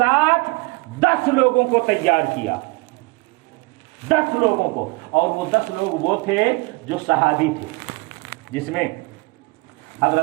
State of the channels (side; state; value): left; quieter; 26.4 dB